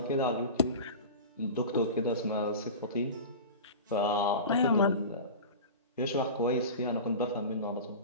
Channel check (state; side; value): inverted; both; correlation -0.31